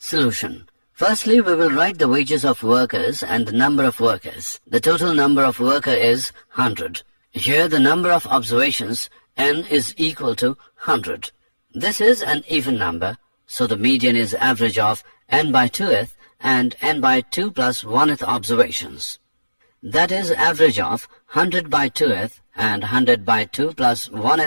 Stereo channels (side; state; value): both; inverted; correlation -1.00